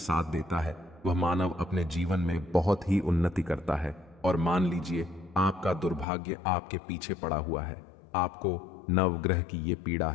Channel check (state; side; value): drops out; right; at 6.1 s